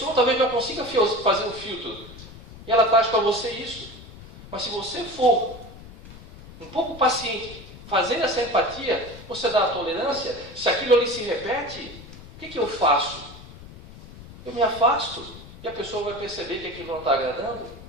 talvez não consiga fazer um filtro. E ela traz para você isso. Mas se você for um pouco paciente, fazer essa empatia, você dá a tolerância, se aquilo ali se repete, o que eu faço? Eu me afasto e a pessoa vai perceber que aquilo não está agradando.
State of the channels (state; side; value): noise; left; rumble, 17 dB below the sound